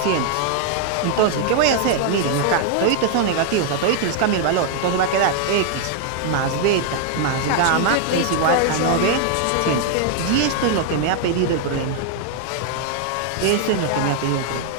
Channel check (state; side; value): different; both; correlation 0.00